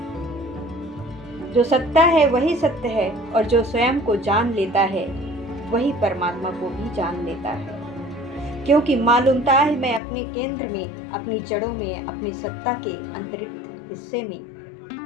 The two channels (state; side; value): drops out; right; at 10.0 s